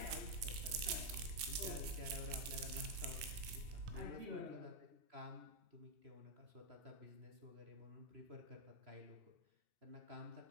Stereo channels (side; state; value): left; late; 2.6 ms